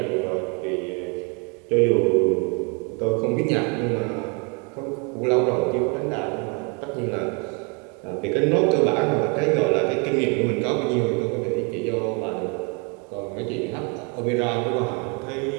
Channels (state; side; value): quieter; left; 34.1 dB